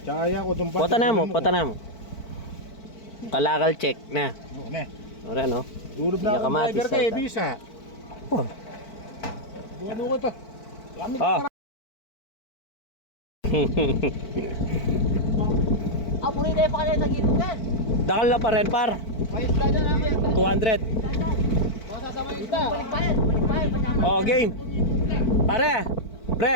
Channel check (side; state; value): right; late; 4.5 ms